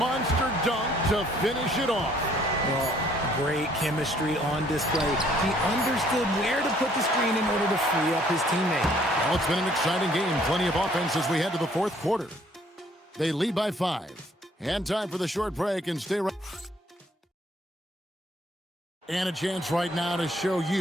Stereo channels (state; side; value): normal; both; correlation 0.62